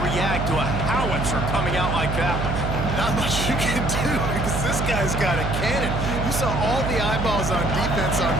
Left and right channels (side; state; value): right; noise; hum, 2 dB below the sound